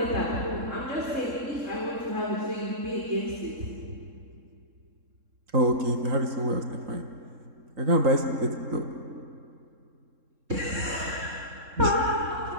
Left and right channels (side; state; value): left; late; 3.7 ms